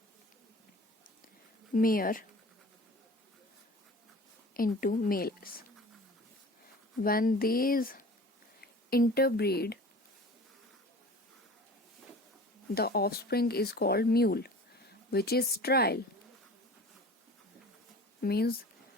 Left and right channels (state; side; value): normal; both; correlation 0.41